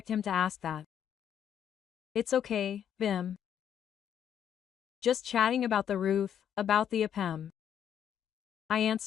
him to ask that. It's okay, Bim. Just chatting about the roof, about the APM. I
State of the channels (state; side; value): quieter; right; 9.2 dB